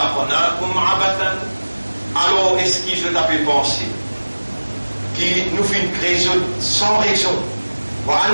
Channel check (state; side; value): inverted; both; correlation -1.00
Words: عبثا. Alors est-ce que je t'avais pensé qui nous fait une création sans raison